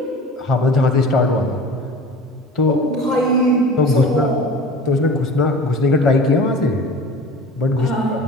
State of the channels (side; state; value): both; normal; correlation 0.38